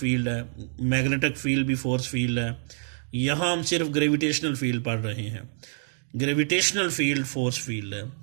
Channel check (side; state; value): left; silent; digital silence